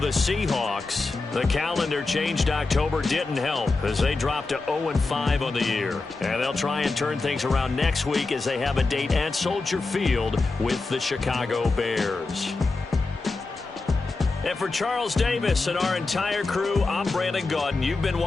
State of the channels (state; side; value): quieter; right; 3.7 dB